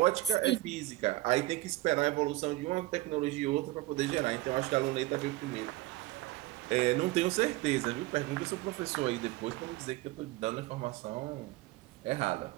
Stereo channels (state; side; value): quieter; left; 17.9 dB